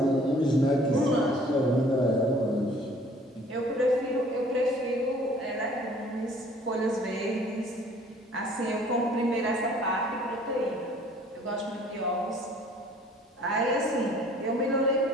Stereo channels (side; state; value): both; normal; correlation 0.54